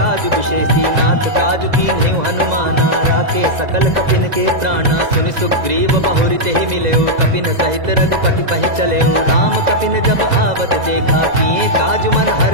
विशेषी। नाथ काजु कीन्हेउ हनुमाना, राखे सकल कपिन के प्राणा। सुनि सुग्रीव बहुरि तेहि मिलयो, कपिन सहित रघुपति पहि चलयो। राम कपिन जब आवत देखा, किए काजु मन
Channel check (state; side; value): late; left; 2.0 ms